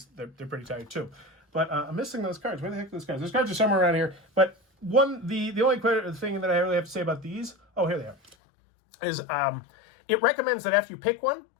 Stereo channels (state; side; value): drops out; right; at 8.3 s